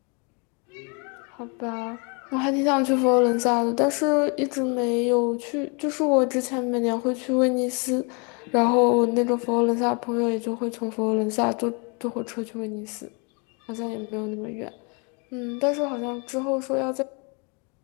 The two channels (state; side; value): quieter; right; 33.6 dB